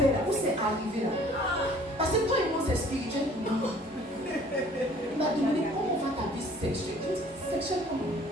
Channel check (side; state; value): both; normal; correlation 0.54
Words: là, où c'est arrivé, là? Parce que toi et moi, c'est spirituel pour moi. Il m'a demandé, comment va ta vie sexuelle? Je dis, sexuelle comment?